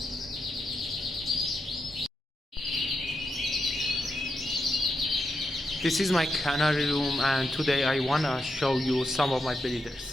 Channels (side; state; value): both; normal; correlation 0.85